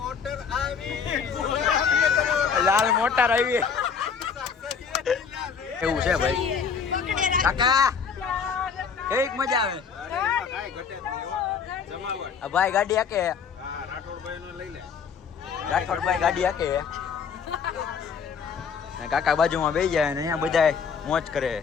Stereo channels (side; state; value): right; quieter; 6.4 dB